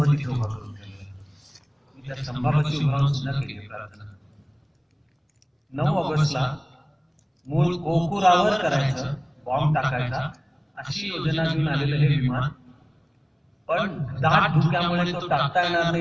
तिथे उभा करून ठेवला. मी त्या स्तंभापाशी उभा राहून सुद्धा केली प्रार्थना. 9 ऑगस्टला मूळ कोकुरावर करायचं, बॉम्ब टाकायचा अशी योजना घेऊन आलेलं हे विमान, पण दाट धुक्यामुळे तो टाकता येणार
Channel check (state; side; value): identical; both; correlation 1.00